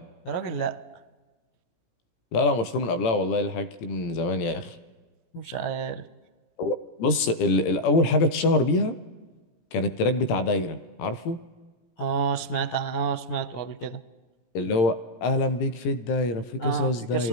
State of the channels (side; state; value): right; late; 18 ms